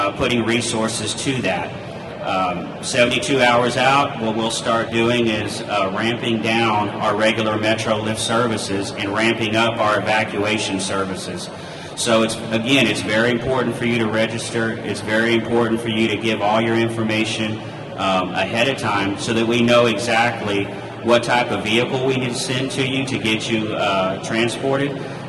putting resources to that. 72 hours out, what we'll start doing is ramping down our regular METROLIFT services and ramping up our evacuation services. So it's very important for you to register. It's very important for you to give all your information ahead of time so that we know exactly what type of vehicle we need to send to you to get you transported.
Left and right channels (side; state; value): both; identical; correlation 1.00